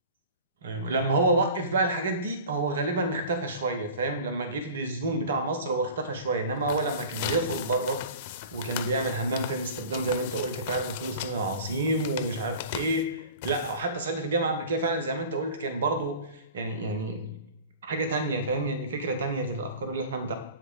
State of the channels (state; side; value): inverted; both; correlation -0.40